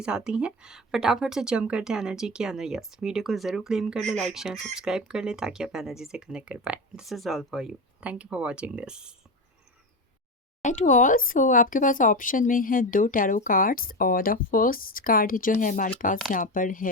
आती हैं फटाफट से जंप करते हैं एनर्जी के अंदर। यस, वीडियो को ज़रूर क्लेम कर ले, लाइक शेयर सब्सक्राइब कर ले ताकि आप एनर्जी से कनेक्ट कर पाए। This is all for you. Thank you for watching this. To all, so आपके पास ऑप्शन में है 2 टैरो कार्ड्स और द फर्स्ट कार्ड जो है हमारे पास यहाँ पर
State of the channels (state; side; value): normal; both; correlation 0.20